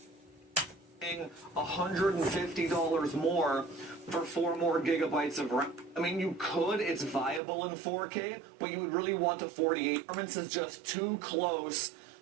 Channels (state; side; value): drops out; left; at 7.4 s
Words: $150 more for 4 more gigabytes of RAM. I mean, you could, it's viable in 4K, but you would really want a 48. Performance is just too close